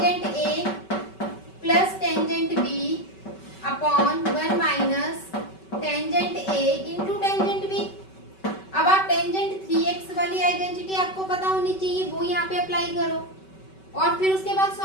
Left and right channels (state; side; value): late; right; 5.2 ms